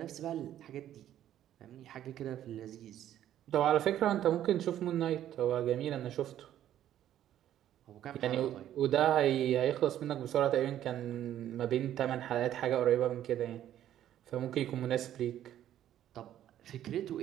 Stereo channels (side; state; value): left; quieter; 11.7 dB